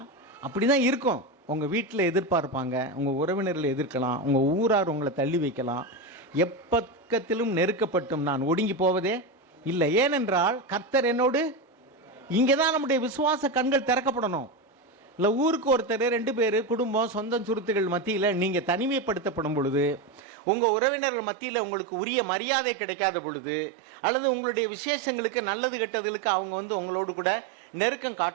அப்படி தான் இருக்கும். உங்கள் வீட்டில் எதிர்பார்ப்பாங்க, உங்கள் உறவினர்களை எதிர்க்கலாம், உங்கள் ஊரார் உங்களை தள்ளி வைக்கலாம். எப்பக்கத்திலும் நெருக்கப்பட்டும் நான் ஒடுங்கி போவதே இல்லை, ஏனென்றால் கர்த்தர் என்னோடு. இங்கே தான் நம்முடைய விசுவாச கண்கள் திறக்கப்படணும். இல்லை ஊருக்கு ஒருத்தர் 2 பேர் குடும்பம் சொந்தம் சுருத்துகள் மத்தியில் நீங்கள் தனிமைப்படுத்தப்படும் பொழுது, உங்கள் உறவினர்கள் மத்தியில் உங்களுக்கு உரிய மரியாதை கிடைக்காத பொழுது, அல்லது உங்களுடைய விசேஷங்களுக்கு நல்லது கெட்டதுகளுக்கு அவங்க வந்து உங்களோடு கூட நெருக்கம்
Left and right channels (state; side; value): drops out; left; at 20.2 s